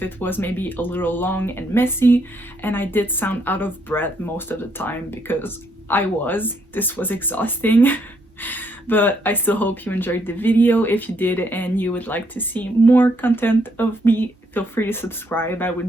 it was maybe a little long and messy, and I did sound out of breath most of the time because this was exhausting. But I still hope you enjoyed the video. If you did and you would like to see more content of me, feel free to subscribe. I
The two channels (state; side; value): normal; both; correlation 0.72